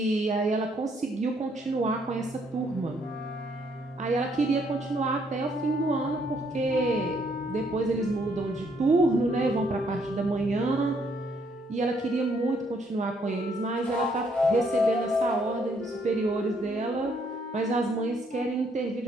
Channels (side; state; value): both; normal; correlation 0.69